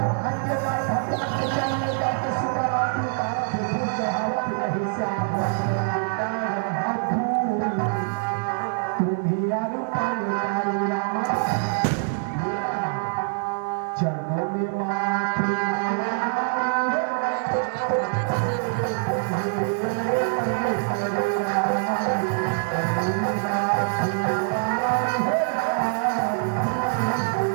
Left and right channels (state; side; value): silent; left; digital silence